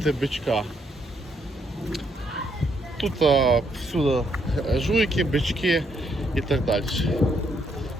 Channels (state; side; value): normal; both; correlation 0.74